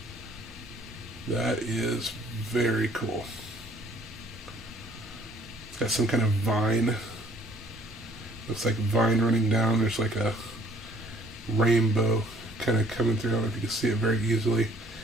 That is very cool. It's got some kind of vine. Looks like vine running down. There's like a rainbow kind of coming through. I don't know if you can see it very easily.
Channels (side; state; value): both; normal; correlation 0.59